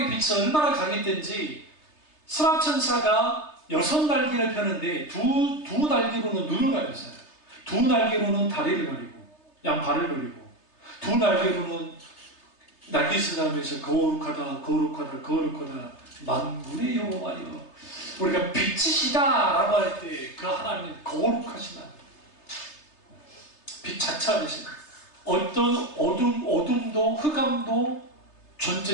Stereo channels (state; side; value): late; right; 3.3 ms